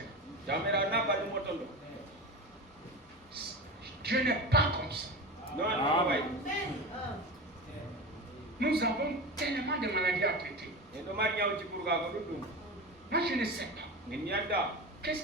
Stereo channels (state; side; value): normal; both; correlation 0.26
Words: Dieu n'est pas comme ça. Nous avons tellement de maladies à traiter. Moi je ne sais pas. Qu'est-ce